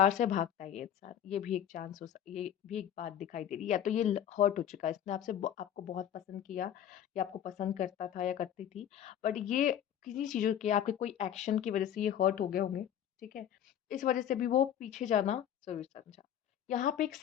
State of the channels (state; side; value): quieter; right; 10.1 dB